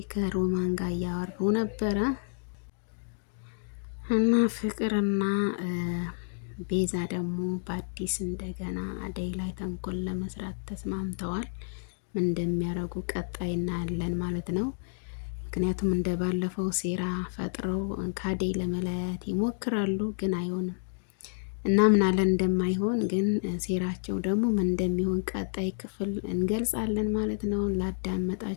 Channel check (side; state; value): right; silent; digital silence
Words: ከሮማን ጋር እያወሩ ነበረ እና ፍቅርና ቤዛ ደግሞ በአዲስ እንደገና አደይ ላይ ተንኮል ለመስራት ተስማምተዋል። ምን እንደሚያደርጉ ቀጣይ እናያለን ማለት ነው። ምክንያቱም እንደ ባለፈው ሴራ ፈጥረው ከአደይ ለመለያየት ይሞክራሉ፣ ግን አይሆንም። እናምናለን እንደማይሆን፣ ግን ሴራቸው ደግሞ ምን እንደሚሆን ቀጣይ ክፍል እንገልጻለን ማለት ነው።